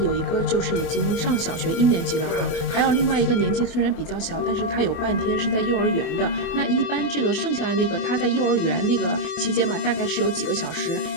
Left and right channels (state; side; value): late; right; 24 ms